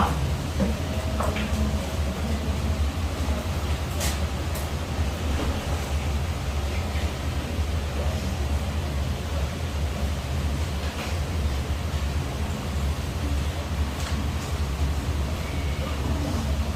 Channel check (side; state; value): both; identical; correlation 1.00